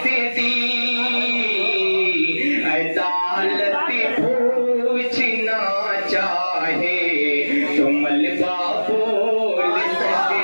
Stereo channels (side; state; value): both; inverted; correlation -1.00